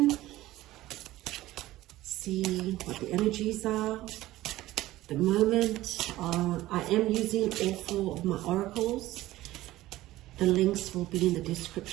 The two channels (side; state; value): left; quieter; 16.4 dB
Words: see what the energies are at the moment. I am using all 4 of my oracles. The links will be in the